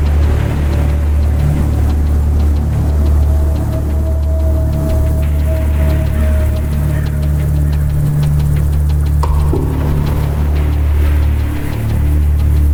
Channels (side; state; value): both; identical; correlation 1.00